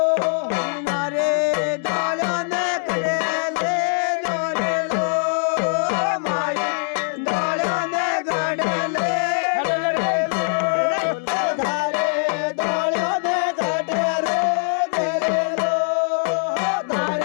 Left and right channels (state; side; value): silent; right; 60 dB below the other